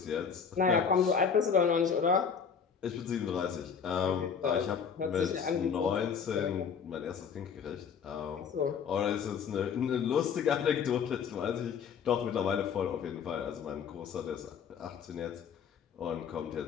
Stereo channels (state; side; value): quieter; right; 6.7 dB